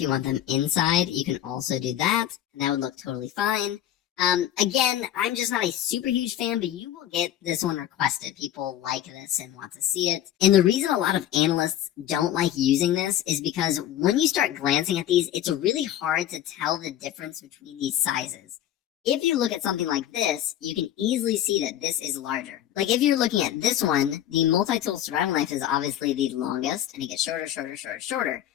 you want them inside, you can also do that, and that would look totally fine. Again, I'm just not a super huge fan, but you will get this one requested. People like this and want to see it. And the reason a lot of analysts don't like using this is because when you start glancing at these, it's really hard to tell the difference between these sizes. If you look at something like this, you can easily see that this is larger. Like if you're looking at this one, the multi-tool survival knife is obviously the longest, and it gets shorter, shorter, shorter, shorter.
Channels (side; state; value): right; quieter; 11.7 dB